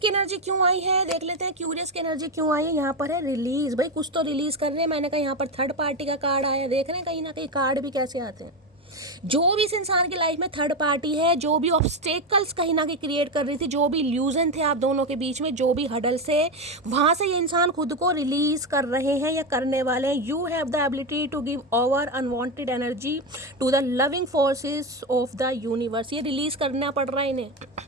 एनर्जी क्यों आई है, देख लेते हैं क्यूरियस की एनर्जी क्यों आई है। यहाँ पर है रिलीज, भाई कुछ तो रिलीज कर रहे हैं। मैंने कहा यहाँ पर थर्ड पार्टी का कार्ड आया, देख रहे हैं कहीं ना कहीं कार्ड भी कैसे आते हैं। जो भी इस इंसान की लाइफ में थर्ड पार्टी है, जो भी ऑब्स्टेकल्स कहीं ना कहीं क्रिएट कर रही थी, जो भी इल्यूजन थे आप दोनों के बीच में, जो भी हडल से, वहां से ये इंसान खुद को रिलीज कर रहे हैं या करने वाले हैं। You have the ability to give over unwanted energy to the loving forces of the universe. ये रिलीज करना पड़ रहा है इन्हें,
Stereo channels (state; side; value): normal; both; correlation 0.13